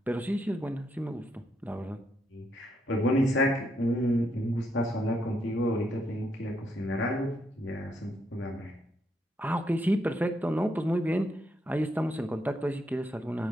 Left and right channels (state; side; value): normal; both; correlation 0.77